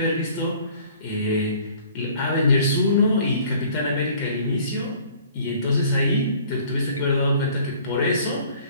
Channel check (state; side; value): inverted; both; correlation -0.53